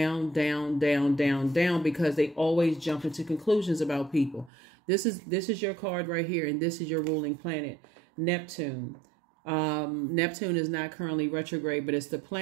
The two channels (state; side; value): drops out; left; at 4.5 s